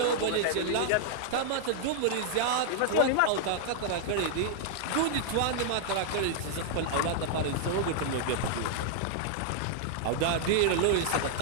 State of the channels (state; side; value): different; both; correlation -0.01